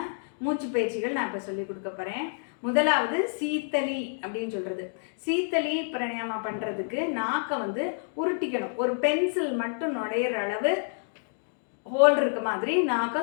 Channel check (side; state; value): right; silent; digital silence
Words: மூச்சு பயிற்சிகள் நான் இப்போ சொல்லி கொடுக்க போகிறேன். முதலாவது சீத்தளி அப்படின்னு சொல்கிறது. சீத்தளி பிராணாயாமா பண்ணுறதுக்கு நாக்கை வந்து உருட்டிக்கணும். ஒரு பென்சில் மட்டும் நுழையிற அளவு ஹோல் இருக்க மாதிரி நாக்கை